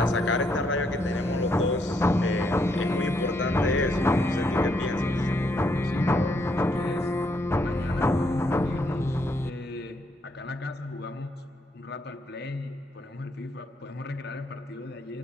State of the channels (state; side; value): normal; both; correlation 0.74